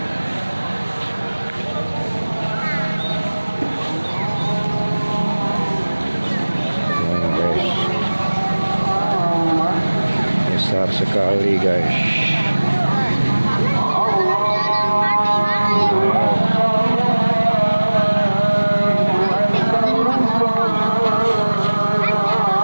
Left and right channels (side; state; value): both; inverted; correlation -1.00